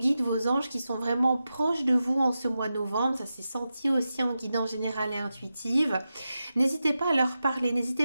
vos anges qui sont vraiment proches de vous en ce mois de novembre. Ça s'est senti aussi en guidance générale et intuitive. N'hésitez pas à leur parler,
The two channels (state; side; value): inverted; both; correlation -0.91